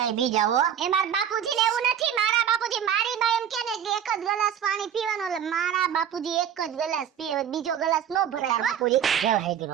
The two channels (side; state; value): left; quieter; 9.1 dB